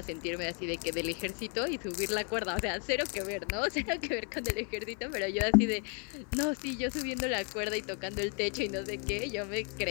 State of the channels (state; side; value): quieter; right; 39.5 dB